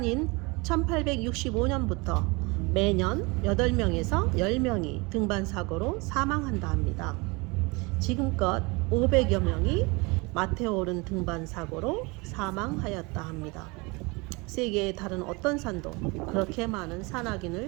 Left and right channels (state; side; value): quieter; left; 26.8 dB